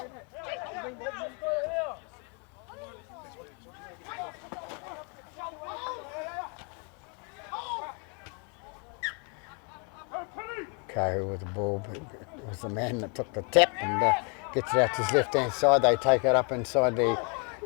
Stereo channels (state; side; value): quieter; right; 36.4 dB